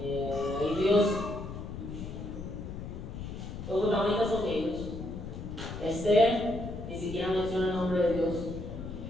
Dios, los protagonistas son ellos. Esther, ni siquiera menciona el nombre de Dios.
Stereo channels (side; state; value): left; noise; rumble, 8 dB below the sound